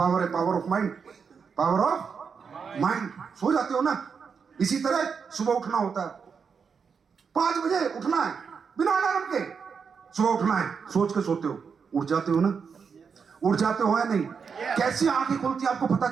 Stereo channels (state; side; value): quieter; left; 6.0 dB